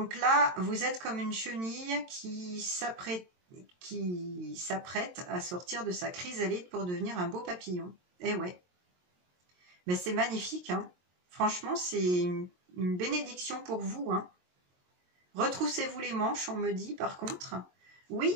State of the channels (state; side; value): late; left; 22 ms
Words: là, vous êtes comme une chenille qui s'apprête à sortir de sa chrysalide pour devenir un beau papillon. Eh ouais. Mais c'est magnifique. Hein. Franchement, c'est une bénédiction pour vous. Hein. Retroussez-vous les manches, on me dit par contre. Oui,